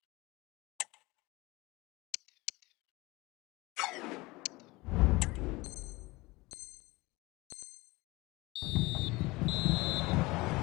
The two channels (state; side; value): quieter; right; 22.3 dB